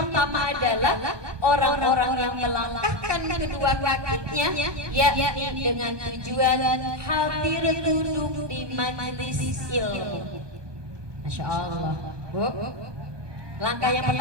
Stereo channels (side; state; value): left; late; 1.2 ms